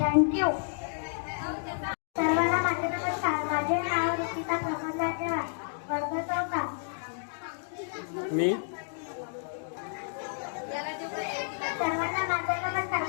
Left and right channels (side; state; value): right; silent; digital silence